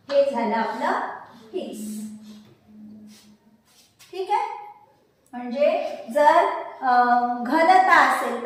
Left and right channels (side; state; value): both; identical; correlation 1.00